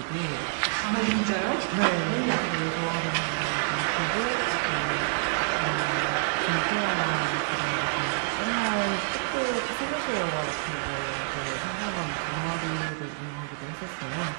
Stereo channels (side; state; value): left; silent; digital silence